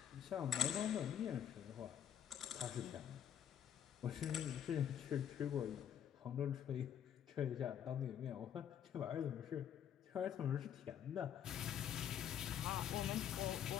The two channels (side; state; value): right; quieter; 9.4 dB